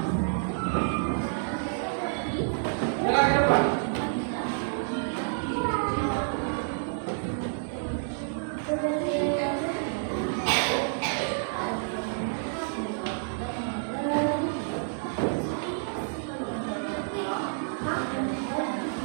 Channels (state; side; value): silent; left; digital silence